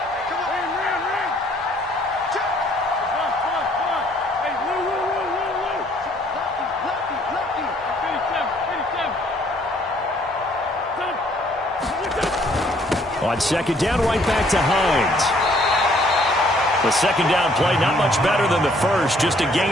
On 2nd down, right back to Hines. The 2nd down play, not much better than the 1st, just a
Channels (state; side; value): normal; both; correlation 0.63